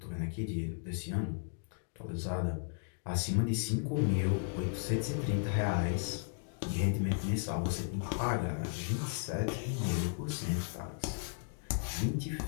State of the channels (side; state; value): right; silent; digital silence